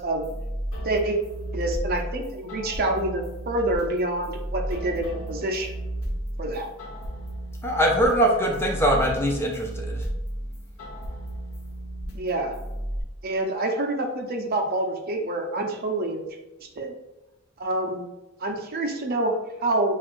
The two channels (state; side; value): normal; both; correlation 0.19